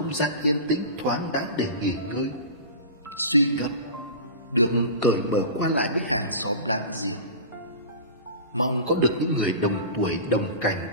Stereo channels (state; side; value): inverted; both; correlation -0.32